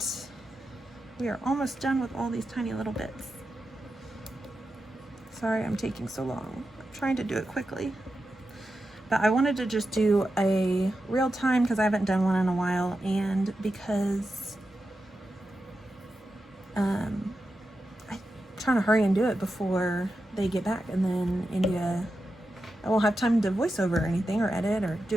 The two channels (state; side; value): normal; both; correlation 0.90